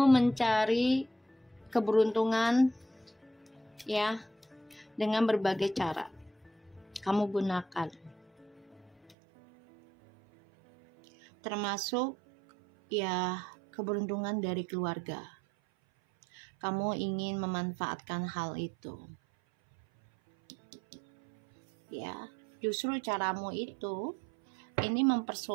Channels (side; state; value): left; drops out; at 9.2 s